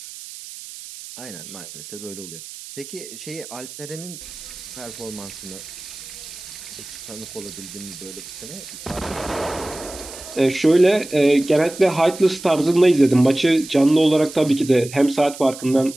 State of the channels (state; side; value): noise; right; hiss, 14 dB below the sound